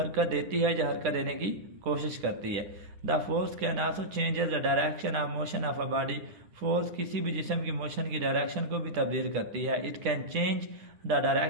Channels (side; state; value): left; late; 10 ms